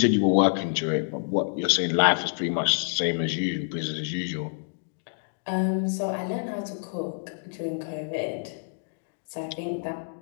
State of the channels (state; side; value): silent; right; digital silence